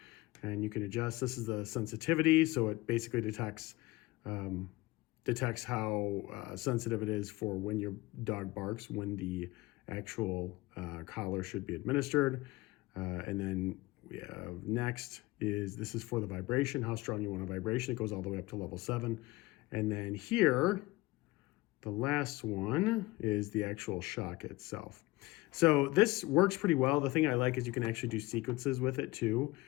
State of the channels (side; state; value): right; quieter; 20.0 dB